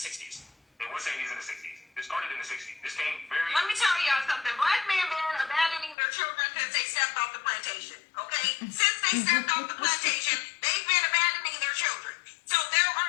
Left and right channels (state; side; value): drops out; right; at 6.0 s